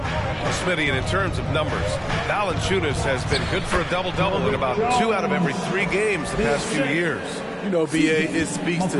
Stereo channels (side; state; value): both; identical; correlation 1.00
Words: and in terms of numbers, Valanciunas has been good for a double-double in about 2 out of every 3 games the past few years. You know, B.A., it speaks